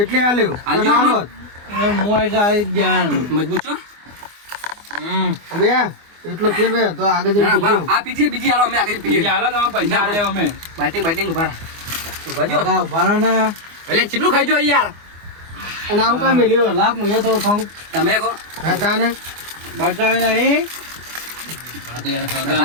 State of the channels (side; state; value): left; late; 24 ms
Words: આલ્યું આલ્યું અને આમાં? આલો જ. હું એટલે આવી જ ગયા મજબૂત છો અમે એટલો ફેર બે તો આગળ જઈને ના, પીજો. બરાબર. આ પીજીએ બીજી હાલો અમે આગળ પીએ હાલો તમે પૈસા આલે અમે બાઇટિંગ ઉભા રહો. ઉભા જો હગા ઉભા રહો ને એટલે કેટલું ખાઈ જો યાર અને આવું કાંઈ મેલ્યું લાખ હું એ થોડું ખાઉં તમે કહો હા તાને બતાવી નહીં